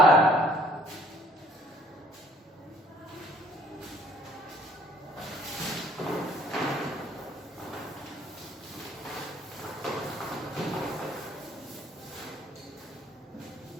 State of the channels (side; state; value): both; normal; correlation 0.59